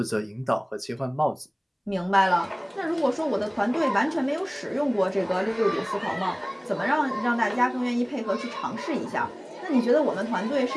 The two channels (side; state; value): both; identical; correlation 1.00